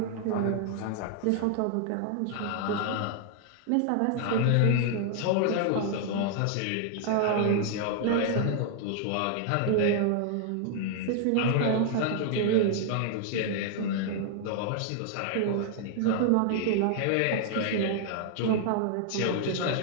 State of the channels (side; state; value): both; different; correlation 0.00